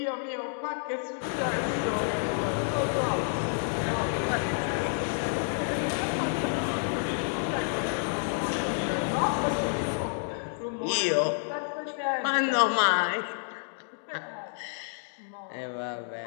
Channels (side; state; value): right; silent; digital silence